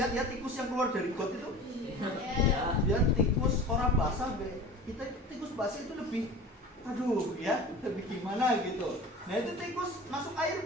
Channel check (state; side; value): normal; both; correlation 0.37